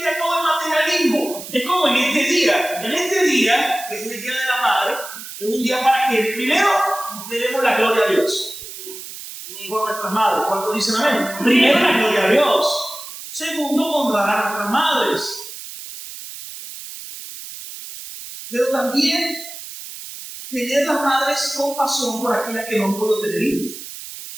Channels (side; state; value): right; noise; hiss, 12 dB below the sound